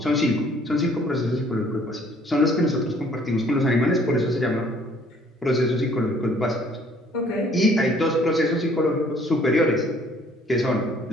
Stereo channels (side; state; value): both; normal; correlation 0.59